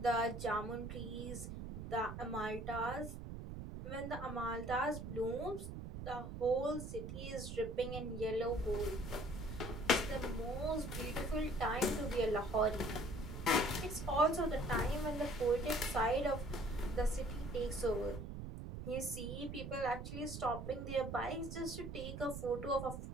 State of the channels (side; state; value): right; noise; rumble, 7 dB below the sound